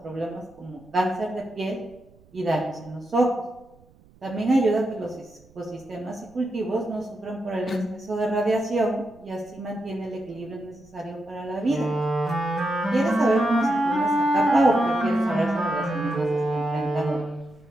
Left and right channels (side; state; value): right; noise; rumble, 28 dB below the sound